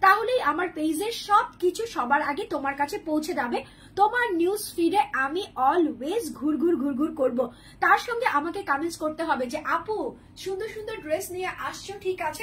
তাহলেই আমার পেজের সবকিছু সবার আগে তোমার কাছে পৌঁছে যাবে। তোমার নিউজ ফিডে আমি অলওয়েজ ঘুরঘুর করব। তার সঙ্গে আমাকে কমেন্টস করতে হবে যে আপু সুন্দর সুন্দর ড্রেস নিয়ে আসছো, ঠিক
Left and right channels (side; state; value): both; identical; correlation 1.00